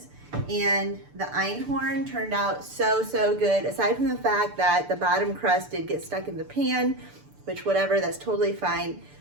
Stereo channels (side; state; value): left; late; 6.8 ms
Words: and the einhorn turned out so good. Aside from the fact that the bottom crust did get stuck in the pan, which whatever, that's totally fine.